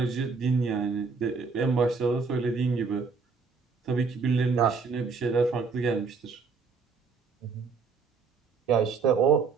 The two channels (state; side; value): quieter; left; 4.9 dB